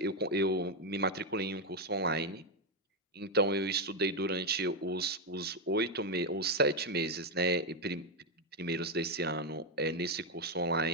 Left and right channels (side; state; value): both; normal; correlation 0.05